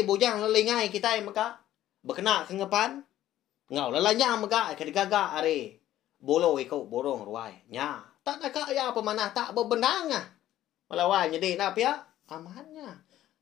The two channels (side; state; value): right; quieter; 13.2 dB